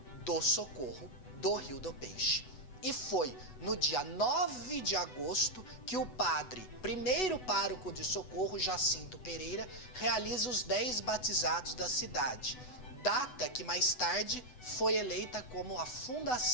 do Socorro do Rio do Peixe. E foi no dia 9 de agosto que o padre, primeiro pároco de Socorro, Jacinto Pereira, realiza os 10 batizados da cidade, data que mais tarde foi eleita como a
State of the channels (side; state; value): right; late; 8.0 ms